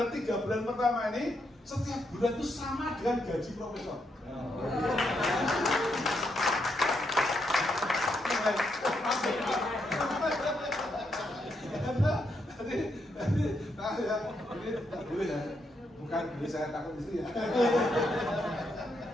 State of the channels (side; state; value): both; normal; correlation 0.79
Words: 3 bulan pertama ini setiap bulan itu sama dengan gaji profesor. bukan beli saya takut istri ya.